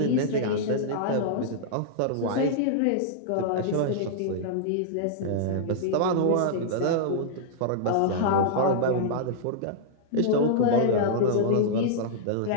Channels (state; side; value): different; both; correlation -0.02